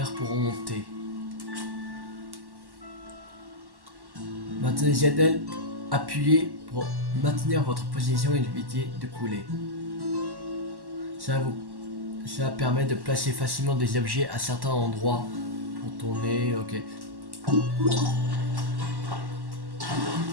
pour remonter. Maintenez ZL, appuyez pour maintenir votre position et éviter de couler. Ça permet de placer facilement des objets à certains endroits pour Tourner, ok. Oh.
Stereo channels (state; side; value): late; left; 1.1 ms